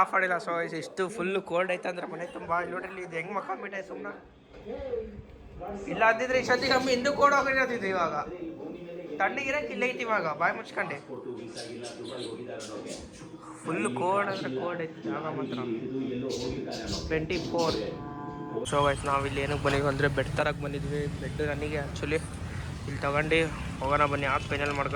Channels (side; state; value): both; identical; correlation 1.00